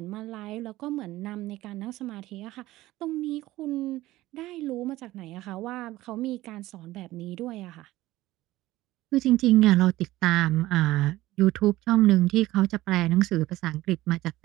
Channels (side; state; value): left; quieter; 16.9 dB